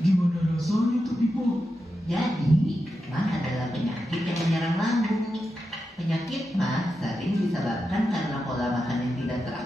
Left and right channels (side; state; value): both; normal; correlation 0.89